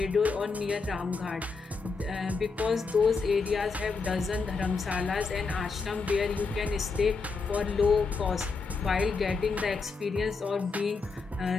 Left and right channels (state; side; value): quieter; right; 4.5 dB